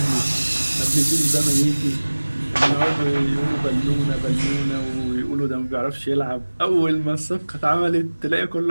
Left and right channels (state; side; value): inverted; both; correlation -1.00